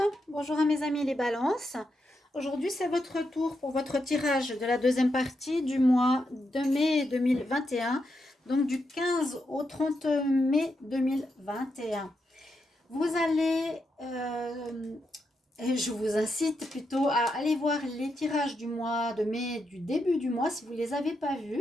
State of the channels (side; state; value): both; normal; correlation 0.84